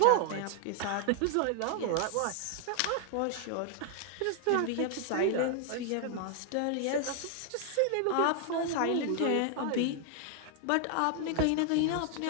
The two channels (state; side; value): different; both; correlation 0.00